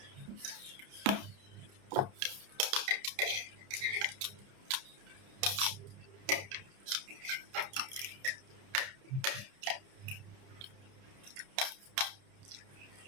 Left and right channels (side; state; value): left; late; 30 ms